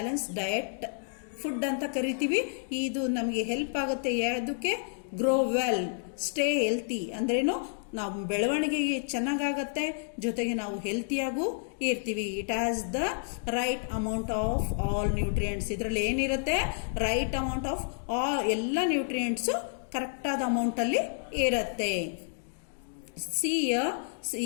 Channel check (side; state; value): right; silent; digital silence